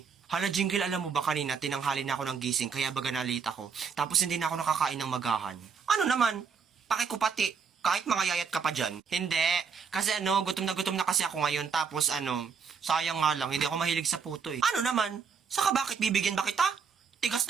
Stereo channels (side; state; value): left; quieter; 6.0 dB